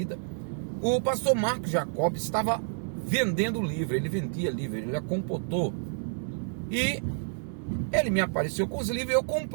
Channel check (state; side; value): silent; left; digital silence